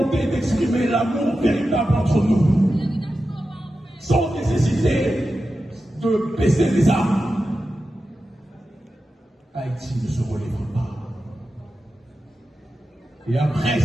d'exprimer l'amour véritable entre nous, sans nécessité de baisser les armes, Haïti ne se relèvera pas. Et après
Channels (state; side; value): normal; both; correlation 0.91